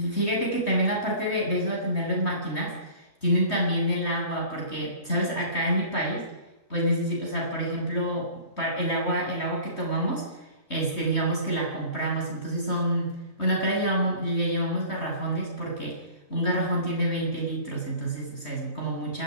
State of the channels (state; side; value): late; right; 3.2 ms